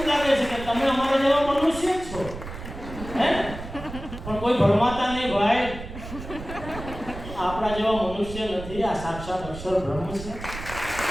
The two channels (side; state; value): right; noise; rumble, 11 dB below the sound